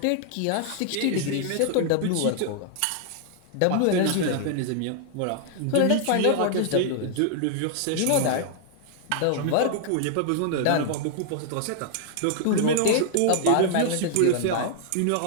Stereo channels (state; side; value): different; both; correlation 0.00